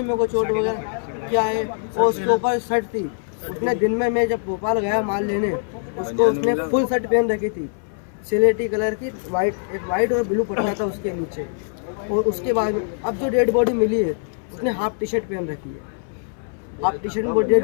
मेरे को चोट वगैरह क्या है। और उसके ऊपर शर्ट थी, उसने दिन में मैं जब भोपाल गया माल लेने, उसको उसने फुल शर्ट पहन रखी थी, सिलेटी कलर की, एक वाइट और ब्लू पट्टा था उसके नीचे। और उसके बाद में अब जो डेड बॉडी मिली है, उसने हाफ टी शर्ट पहन रखी है, हाफ टी शर्ट में डेड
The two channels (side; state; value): right; silent; digital silence